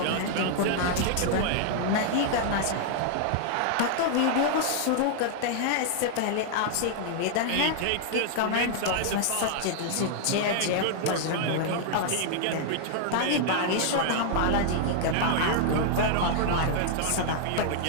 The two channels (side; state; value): both; different; correlation -0.01